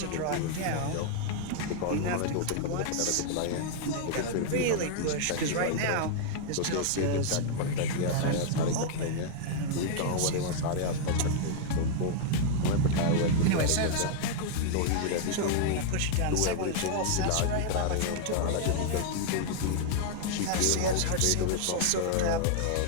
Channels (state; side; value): different; both; correlation -0.01